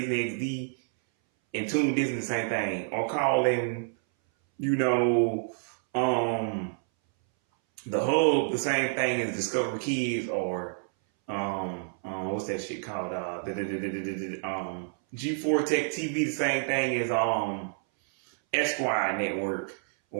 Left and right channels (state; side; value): silent; left; 59 dB below the other